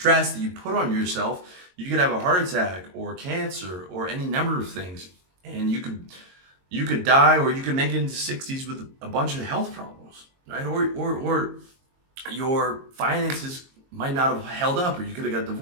that you put on yourself, you could have a heart attack or cancer or any number of things. And you could die, or you could make it into 60s with a bunch of health problems, right? Or your finances might not have held up, or you could have got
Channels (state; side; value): late; left; 22 ms